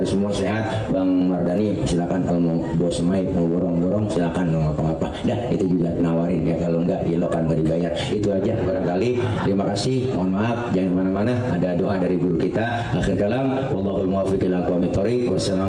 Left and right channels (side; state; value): both; identical; correlation 1.00